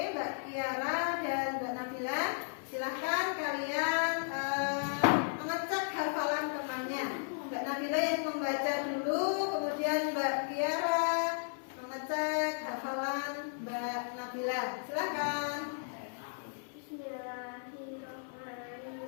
Mbak Kiara dan Mbak Nabila, silahkan kalian mengecek hafalan temannya. Mbak Nabila yang membaca dulu, kemudian Mbak Kiara mengecek hafalan Mbak Nabila. Silakan.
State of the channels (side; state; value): right; silent; 55 dB below the other